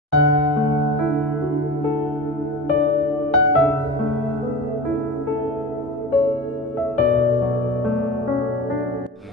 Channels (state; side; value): normal; both; correlation 0.31